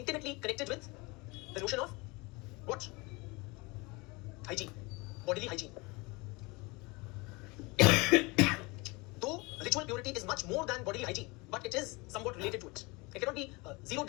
connected with the notion of what? Hygiene, bodily hygiene. Though ritual purity is much more than bodily hygiene, but it is somewhat related to it. It cannot be zeroed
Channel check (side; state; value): right; quieter; 25.7 dB